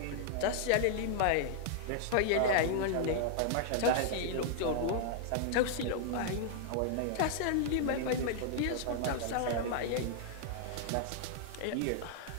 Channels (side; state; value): both; different; correlation -0.01